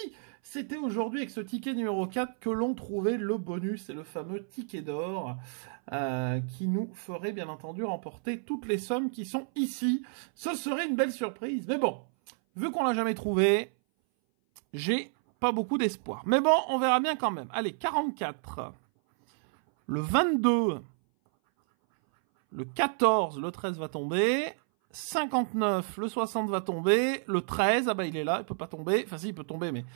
c'était aujourd'hui avec ce ticket numéro 4 que l'on trouvait le bonus et le fameux ticket d'or qui nous ferait bien entendu remporter toutes les sommes qui sont ici. Ce serait une belle surprise. Mais bon, vu qu'on l'a jamais trouvé, j'ai pas beaucoup d'espoir. Mais bon, on verra bien quand même. Allez, 44, le 22, le 14, le 13 va tomber... 59, le 60 va tomber, le 13, ah bah il est là, il peut pas tomber, enfin si il peut tomber mais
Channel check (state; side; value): silent; left; 58 dB below the other